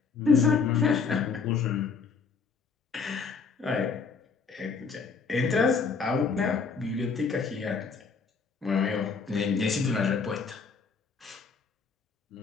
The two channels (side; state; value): right; quieter; 5.2 dB